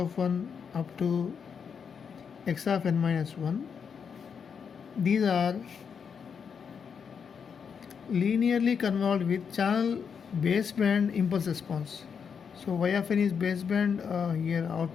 1 up to x of n minus 1. These are linearly convolved with channel baseband impulse response. So y of n is baseband here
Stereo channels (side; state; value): right; quieter; 6.6 dB